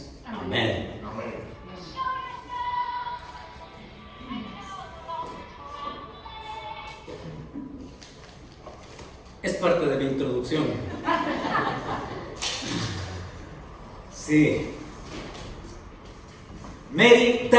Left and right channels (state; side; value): identical; both; correlation 1.00